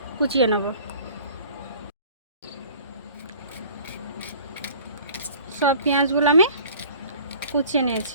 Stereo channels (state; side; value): inverted; both; correlation -0.48